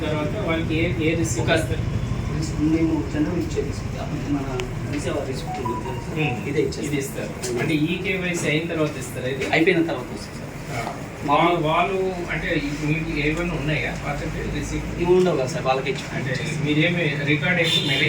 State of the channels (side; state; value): both; identical; correlation 1.00